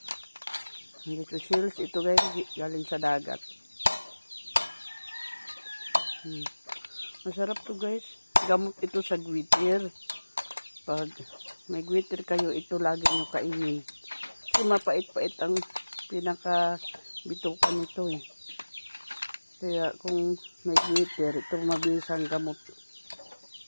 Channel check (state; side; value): inverted; both; correlation -1.00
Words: Little shells ito guys, galing sa dagat. Masarap to guys. Gamot ito sa gwitir. Pag may gwitir kayo, ito lagi nyo kainin. Kasi mapait-pait ang pinaka-bitukan nito eh. Kaya kung may gwitir, ito mabisang gamot.